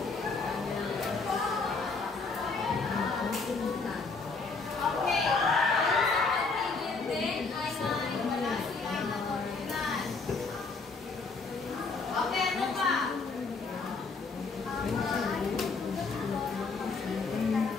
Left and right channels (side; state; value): right; quieter; 4.2 dB